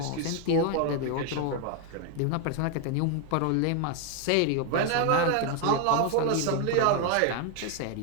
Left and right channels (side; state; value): both; different; correlation 0.01